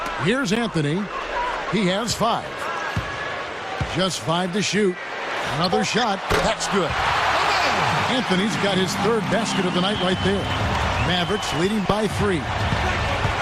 Here's Anthony. He has 5. Just 5 to shoot. Another shot. That's good. Anthony's got his 3rd basket of the night right there. Mavericks leading by 3.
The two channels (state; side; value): identical; both; correlation 1.00